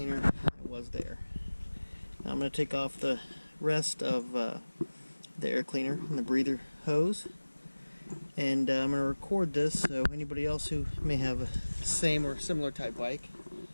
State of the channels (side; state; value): both; inverted; correlation -1.00